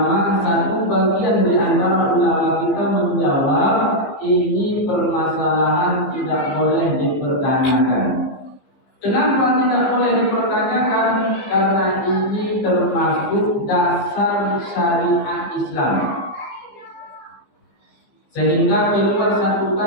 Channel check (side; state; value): right; late; 15 ms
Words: satu bagian di antara ulama kita menjawab ini permasalahan tidak boleh dipertanyakan. Kenapa tidak boleh dipertanyakan? Karena ini termasuk dasar syariat Islam. Sehingga keluar satu